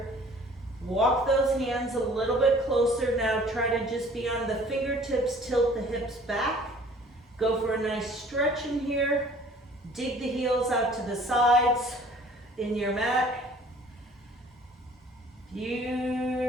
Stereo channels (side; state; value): both; normal; correlation 0.52